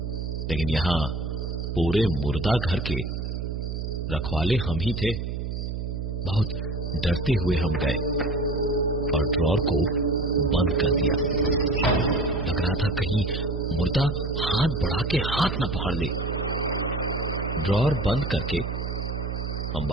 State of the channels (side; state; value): right; noise; hum, 4 dB below the sound